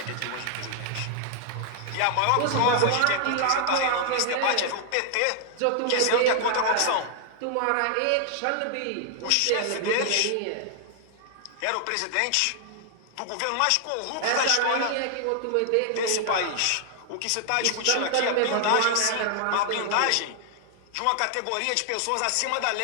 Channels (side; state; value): both; different; correlation 0.00